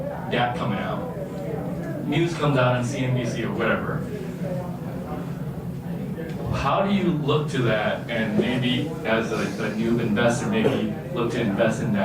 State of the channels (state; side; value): identical; both; correlation 1.00